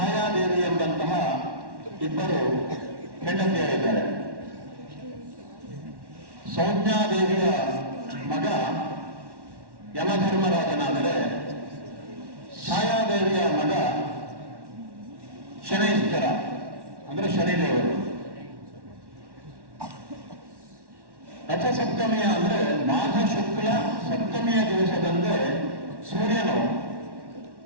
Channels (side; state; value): left; late; 1.1 ms